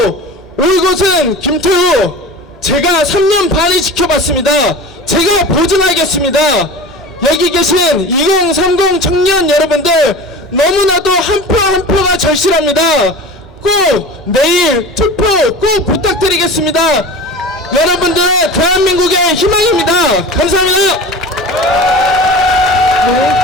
올곧은 김태우, 제가 3년 반을 지켜봤습니다. 제가 보증하겠습니다. 여기 계신 2030 청년 여러분들, 너무나도 한 표 한 표가 절실합니다. 꼭 내일 투표 꼭 부탁드리겠습니다. 여러분들은 대한민국의 희망입니다. 감사합니다.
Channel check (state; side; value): normal; both; correlation 0.35